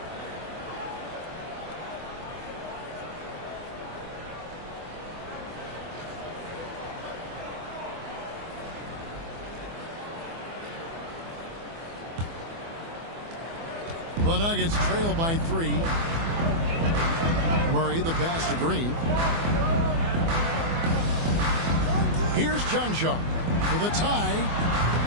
The Nuggets trail by 3. Murray, the pass to Green. Here's Chancellor for the tie.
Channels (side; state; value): left; late; 24 ms